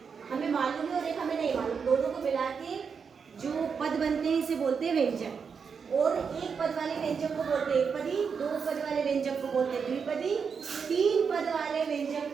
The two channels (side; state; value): left; quieter; 6.1 dB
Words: हमें मालूम है और एक हमें नहीं मालूम, दोनों को मिला के जो पद बनते हैं इसे बोलते हैं व्यंजक। और एक पद वाले व्यंजक को बोलते हैं एकपदी, 2 पद वाले व्यंजक को बोलते हैं द्विपदी, 3 पद वाले व्यंजक